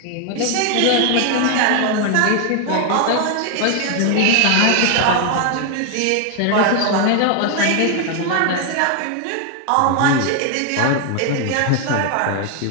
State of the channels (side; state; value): both; different; correlation 0.00